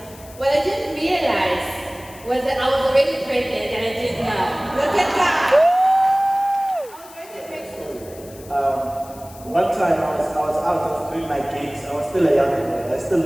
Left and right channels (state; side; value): noise; left; hiss, 21 dB below the sound